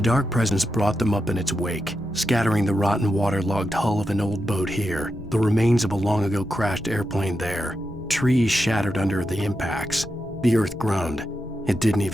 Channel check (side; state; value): both; normal; correlation 0.87